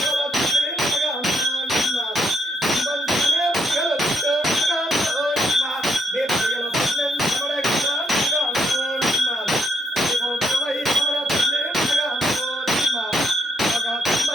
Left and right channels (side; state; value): both; normal; correlation 0.74